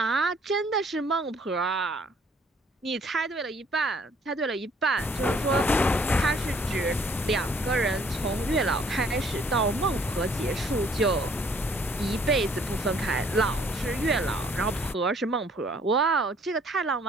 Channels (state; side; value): normal; both; correlation 0.61